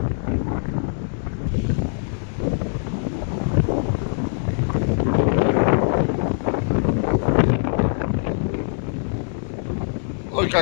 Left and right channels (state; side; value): silent; right; 64 dB below the other